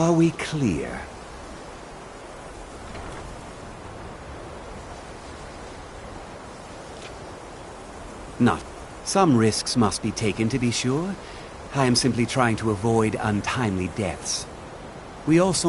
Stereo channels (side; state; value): both; identical; correlation 1.00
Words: we clear? Not. Some risks must be taken, to be sure. I am simply trying to avoid untimely deaths. We